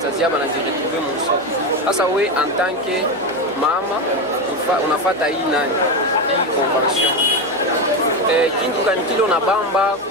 aba najiretrouver mu soko. Sasa we en tant que mama unafata hii nani? Hii convention. Kintu kanikilo na bamba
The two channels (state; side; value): noise; right; hum, 23 dB below the sound